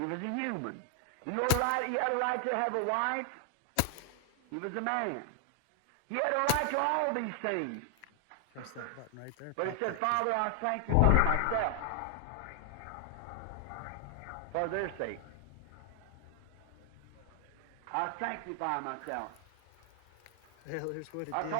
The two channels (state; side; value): different; both; correlation 0.00